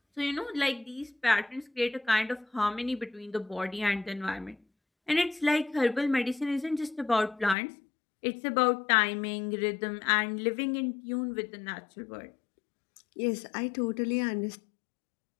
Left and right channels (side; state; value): right; drops out; at 7.6 s